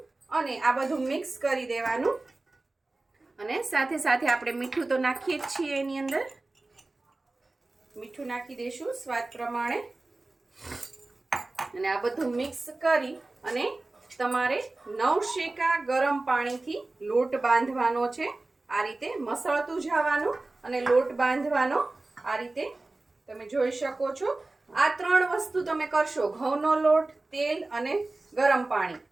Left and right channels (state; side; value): quieter; left; 3.1 dB